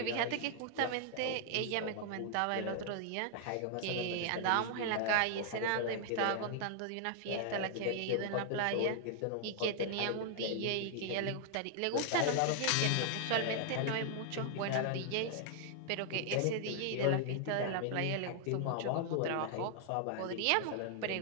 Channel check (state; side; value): different; both; correlation 0.00